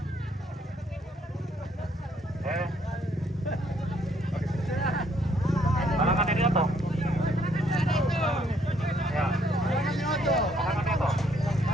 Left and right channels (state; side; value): normal; both; correlation 0.68